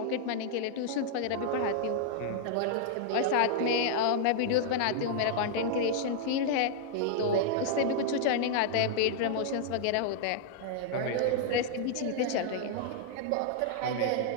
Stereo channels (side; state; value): both; different; correlation -0.01